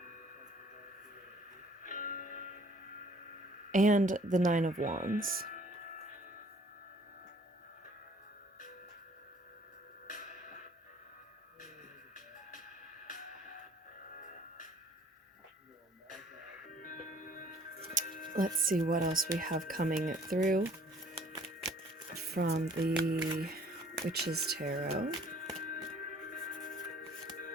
and the Nine of Wands. Let's see what else we have coming through from the Witch's Tarot.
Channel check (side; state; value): both; normal; correlation 0.56